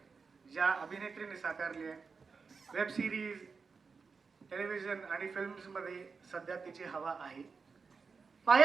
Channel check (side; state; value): left; quieter; 5.0 dB